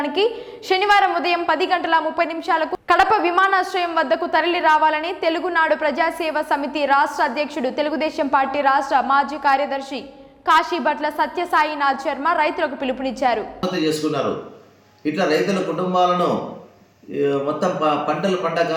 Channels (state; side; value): identical; both; correlation 1.00